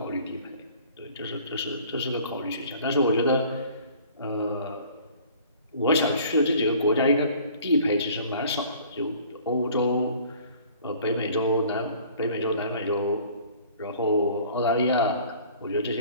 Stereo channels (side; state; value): both; inverted; correlation -0.51